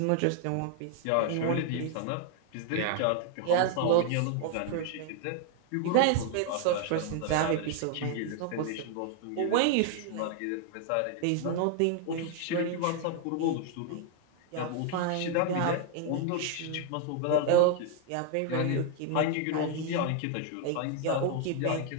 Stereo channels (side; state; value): both; different; correlation 0.00